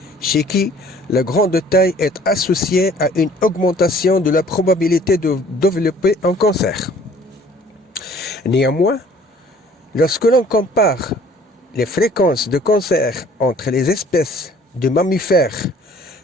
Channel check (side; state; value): both; normal; correlation 0.54